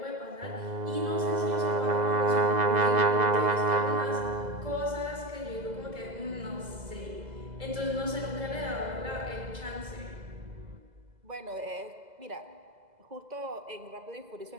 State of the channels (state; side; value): late; left; 2.0 ms